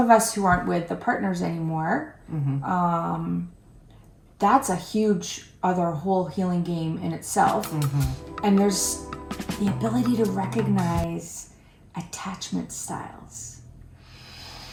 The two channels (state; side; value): identical; both; correlation 1.00